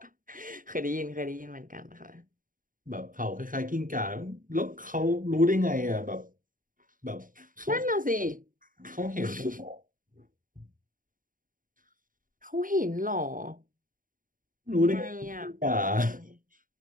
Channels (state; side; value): late; left; 0.39 ms